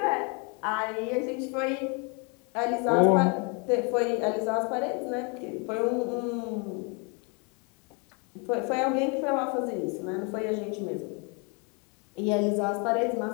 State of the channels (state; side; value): quieter; right; 33.9 dB